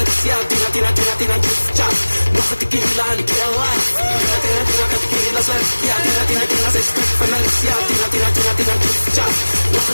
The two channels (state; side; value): inverted; both; correlation -1.00